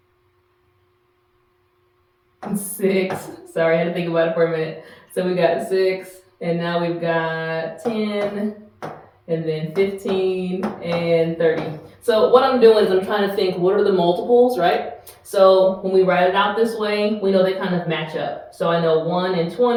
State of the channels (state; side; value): identical; both; correlation 1.00